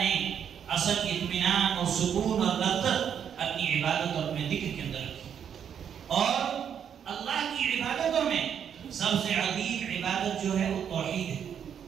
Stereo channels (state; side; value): quieter; left; 8.3 dB